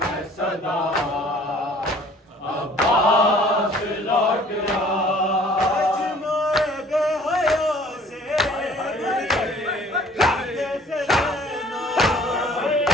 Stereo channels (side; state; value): both; normal; correlation 0.53